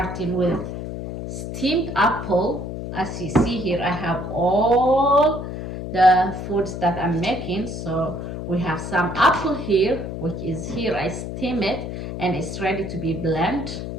with steamed apple. As you see here, I have all the foods that I'm making. So we have some apple here, which is here. I steam it and it's ready to be blended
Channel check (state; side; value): noise; left; hum, 6 dB below the sound